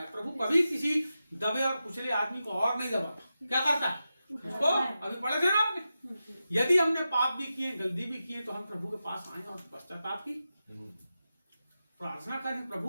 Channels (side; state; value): both; inverted; correlation -0.91